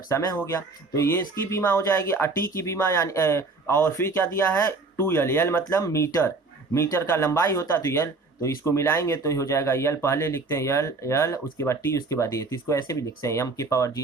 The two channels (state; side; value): quieter; left; 3.7 dB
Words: समय हो गया, तो ये इसकी बीमा हो जाएगी। और T की बीमा यानी और फिर क्या दिया है 2l, L मतलब मीटर, मीटर का लंबाई होता है तो L, तो इसको मिलाएंगे तो हो जाएगा L, पहले लिखते हैं L उसके बाद T उसके बाद ये, तो इसको ऐसे भी लिखते हैं m के पावर